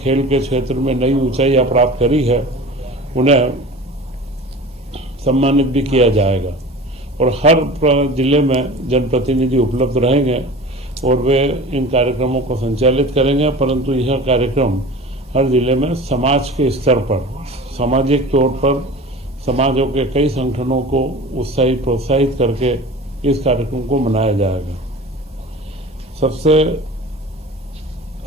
के क्षेत्र में नई ऊंचाइयां प्राप्त करी है, उन्हें सम्मानित भी किया जाएगा और हर जिले में जनप्रतिनिधि उपलब्ध रहेंगे और वे इन कार्यक्रमों को संचालित करेंगे। परंतु यह कार्यक्रम हर जिले में समाज के स्तर पर, सामाजिक तौर पर समाजों के कई संगठनों को उत्साहित प्रोत्साहित करके इस कार्यक्रम को मनाया जाएगा। सबसे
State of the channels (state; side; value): normal; both; correlation 0.37